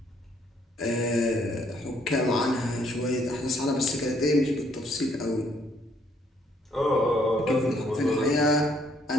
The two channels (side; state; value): both; normal; correlation 0.67